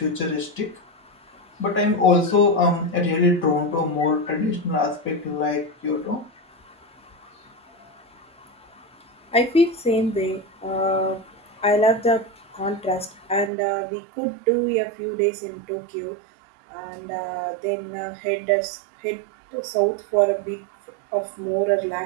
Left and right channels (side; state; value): left; drops out; at 13.5 s